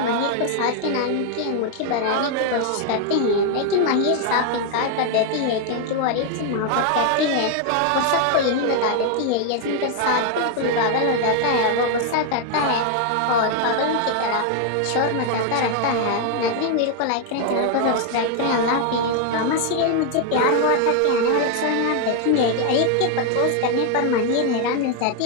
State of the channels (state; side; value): different; both; correlation 0.00